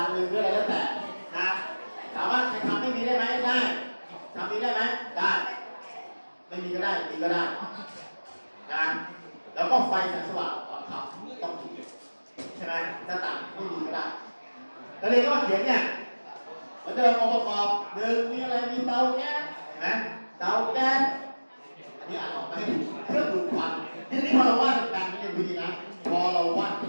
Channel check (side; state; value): both; inverted; correlation -1.00